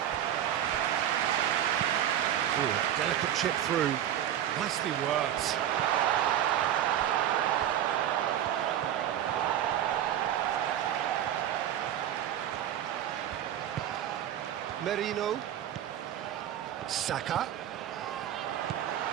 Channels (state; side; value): quieter; left; 10.9 dB